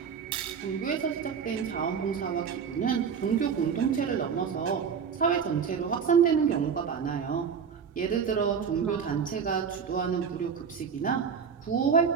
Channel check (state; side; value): quieter; left; 6.6 dB